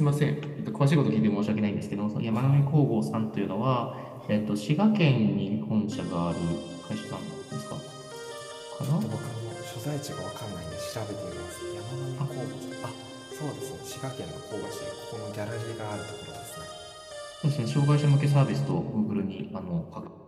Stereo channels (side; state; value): both; identical; correlation 1.00